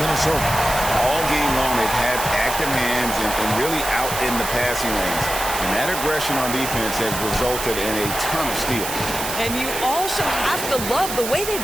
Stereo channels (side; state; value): right; noise; hiss, 5 dB below the sound